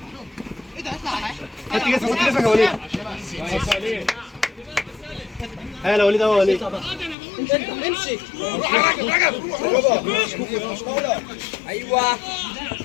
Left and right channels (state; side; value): drops out; right; at 7.2 s